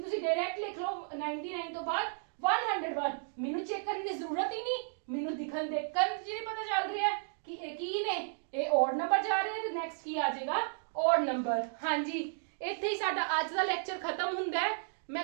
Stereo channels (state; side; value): silent; left; digital silence